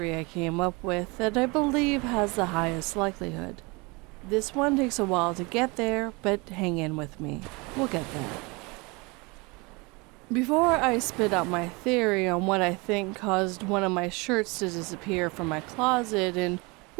I came up with that I believe has the highest likelihood. This one takes a while to get there, but hang in with me. We'll get there. Before I spit out my theory on what I think caused one of my shirts to disappear from my closet and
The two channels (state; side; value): quieter; left; 27.1 dB